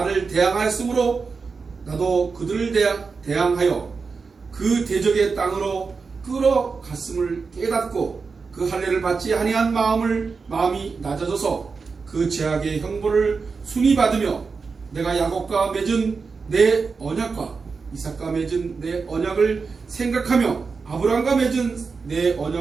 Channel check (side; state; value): left; quieter; 4.8 dB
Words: 대항하였으므로 나도 그들을 대항하여 그 대적의 땅으로 끌어갔음을 깨닫고 그 할례를 받지 아니한 마음이 낮아져서 그 죄악의 형벌을 순히 받으며 내가 야곱과 맺은 내 언약과 이삭과 맺은 내 언약을 생각하며 아브라함과 맺은 내